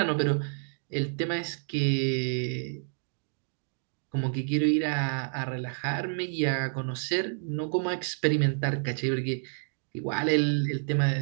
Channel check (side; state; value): left; silent; digital silence